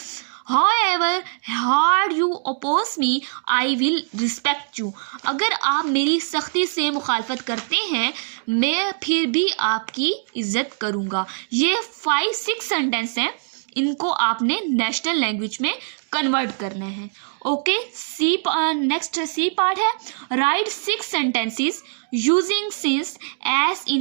However hard you oppose me, I will respect you. अगर आप मेरी सख्ती से मुखालफत करते हैं मैं फिर भी आपकी इज्जत करूँगा. ये 5-6 सेंटेंस हैं, इनको आपने नेशनल लैंग्वेज में कन्वर्ट करना है. ओके, नेक्स्ट सी पार्ट है. Write 6 sentences using since as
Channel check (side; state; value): left; silent; digital silence